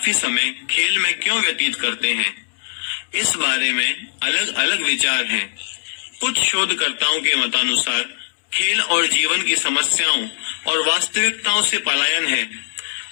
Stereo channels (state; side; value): silent; right; 66 dB below the other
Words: समय खेल में क्यों व्यतीत करते हैं। इस बारे में अलग अलग विचार हैं। कुछ शोधकर्ताओं के मतानुसार खेल और जीवन की समस्याओं और वास्तविकताओं से पलायन है